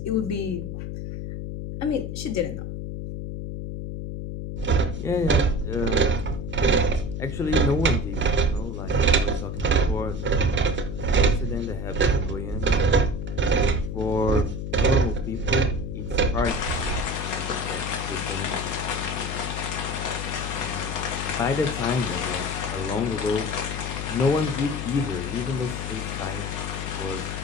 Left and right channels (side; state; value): left; noise; hum, 5 dB below the sound